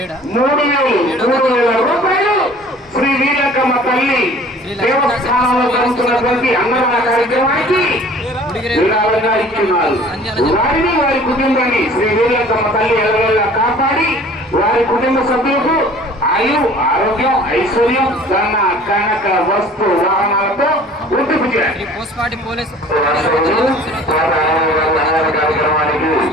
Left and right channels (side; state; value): both; normal; correlation 0.48